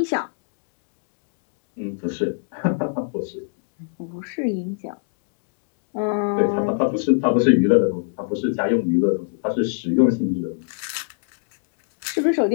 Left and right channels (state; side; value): silent; right; digital silence